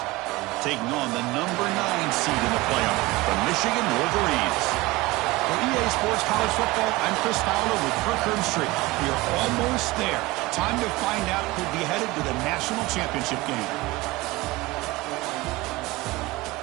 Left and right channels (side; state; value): left; quieter; 20.6 dB